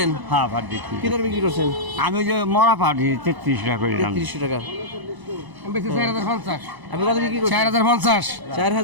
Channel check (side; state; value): left; late; 1.0 ms